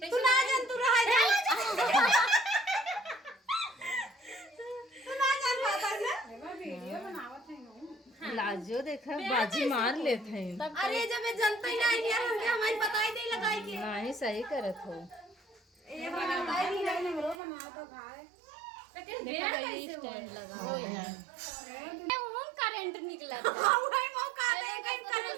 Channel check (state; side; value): drops out; left; at 17.4 s